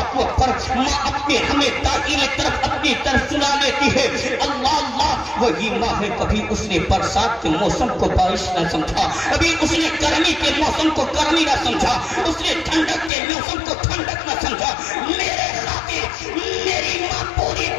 کو پر ماں اپنے ہمیں داخلی طرف اپنی طرف سنا لیتی ہے، اللہ اللہ، وہی ماں ہے۔ کبھی اس نے برسات کے موسم کو بارش نہ سمجھا، کبھی اس نے گرمی کے موسم کو گرمی نہ سمجھا، اس نے ٹھنڈک کے موسم کو ٹھنڈک نہ سمجھا۔ میرے خاطر میری ماں پوری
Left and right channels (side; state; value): right; drops out; at 13.1 s